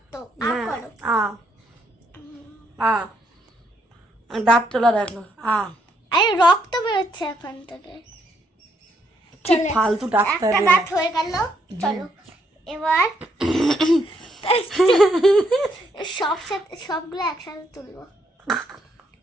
দাঁত তোলা দেখো। আরে রক্ত বেরোচ্ছে এখান থেকে। কি ফালতু ডাক্তার। একটা দাঁত হয়ে গেল, চলো এবার সবগুলো একসাথে তুলবো।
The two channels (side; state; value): both; normal; correlation 0.74